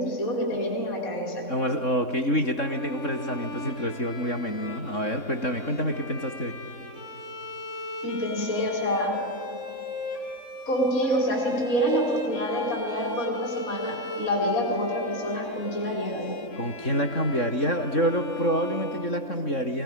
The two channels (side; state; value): right; late; 3.6 ms